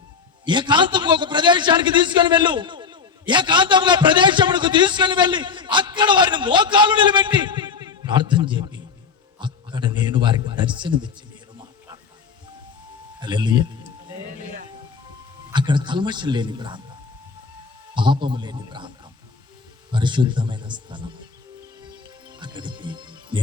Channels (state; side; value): quieter; right; 5.5 dB